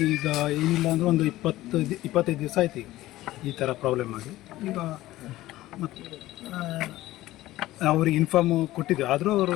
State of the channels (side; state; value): right; quieter; 16.3 dB